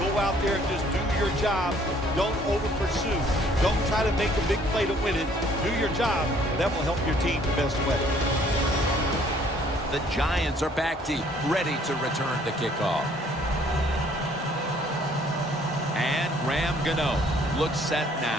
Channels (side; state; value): both; normal; correlation 0.60